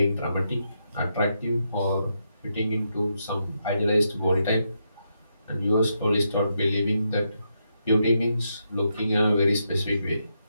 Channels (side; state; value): both; inverted; correlation -0.82